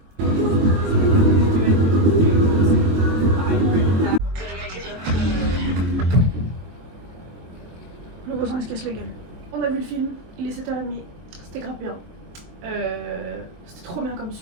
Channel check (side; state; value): left; late; 22 ms